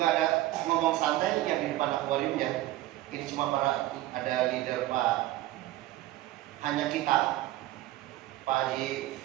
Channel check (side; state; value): left; quieter; 15.8 dB